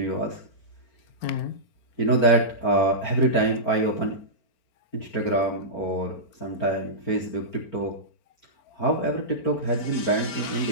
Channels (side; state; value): right; late; 4.4 ms